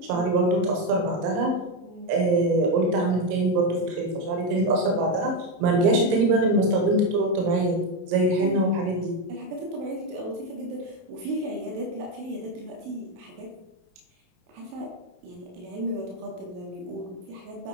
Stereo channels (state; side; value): late; left; 23 ms